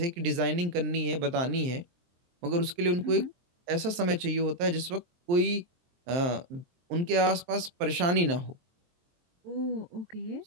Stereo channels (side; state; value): left; late; 23 ms